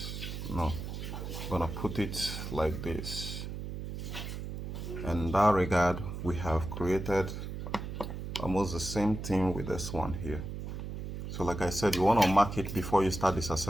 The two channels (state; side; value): noise; right; hum, 6 dB below the sound